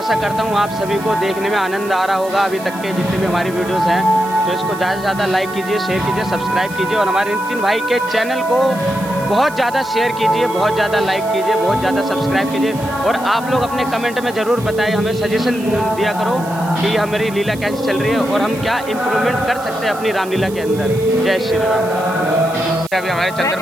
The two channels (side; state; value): right; noise; hiss, 18 dB below the sound